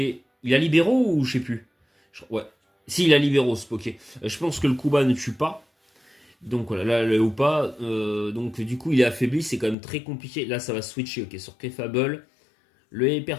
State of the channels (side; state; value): right; drops out; at 9.8 s